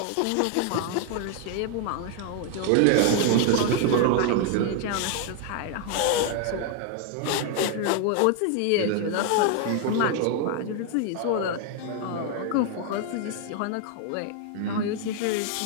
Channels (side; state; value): both; different; correlation 0.00